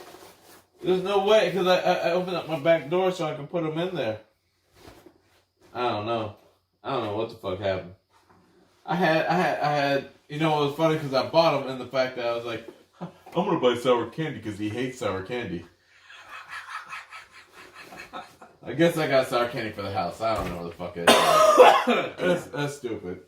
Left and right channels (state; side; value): identical; both; correlation 1.00